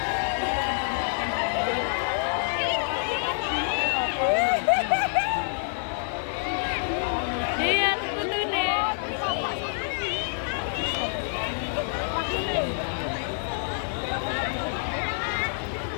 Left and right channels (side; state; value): right; silent; 60 dB below the other